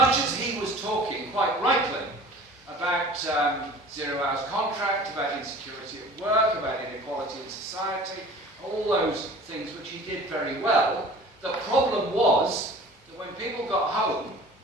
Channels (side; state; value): both; normal; correlation 0.44